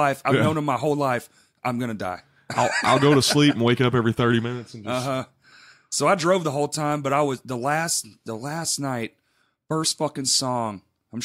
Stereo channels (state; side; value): identical; both; correlation 1.00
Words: I've known them my whole life. I'm gonna die. I'll go to sleep and wake up every 30 minutes and just So I drove the whole time, but I was the last night, first fucking song. I'm